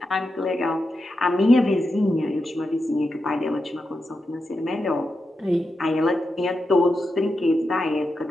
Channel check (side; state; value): both; normal; correlation 0.88